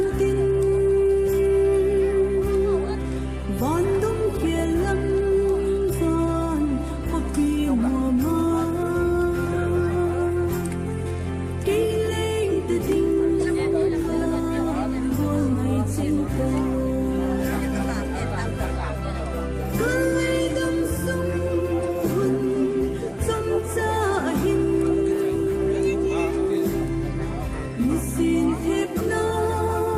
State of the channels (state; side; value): identical; both; correlation 1.00